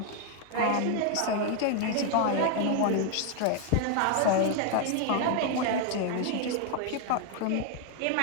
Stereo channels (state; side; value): different; both; correlation 0.01